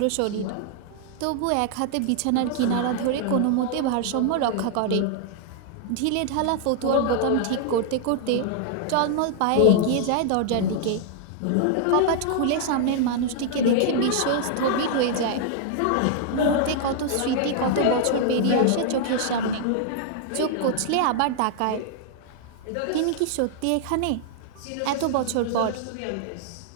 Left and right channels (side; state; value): both; different; correlation -0.01